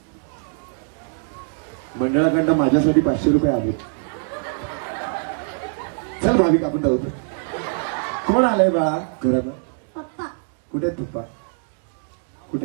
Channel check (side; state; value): left; silent; digital silence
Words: मंडळाकडनं माझ्यासाठी 500 रुपये आले. चल भाविक आपण जाऊ. कोण आलंय बाळा घरात? पप्पा. कुठे आहेत पप्पा?